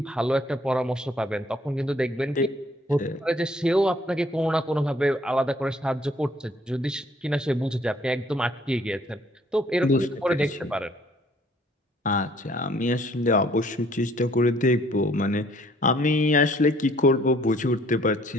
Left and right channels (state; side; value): normal; both; correlation 0.60